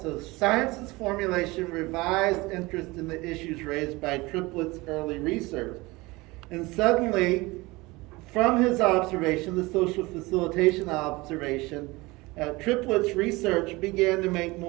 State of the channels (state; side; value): quieter; left; 22.4 dB